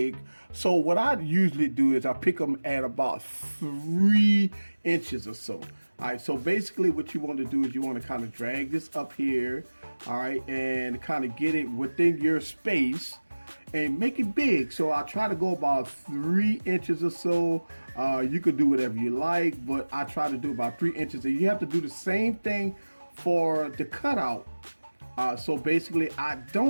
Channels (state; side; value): inverted; both; correlation -1.00